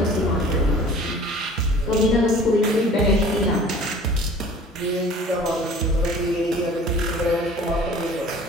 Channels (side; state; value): both; normal; correlation 0.47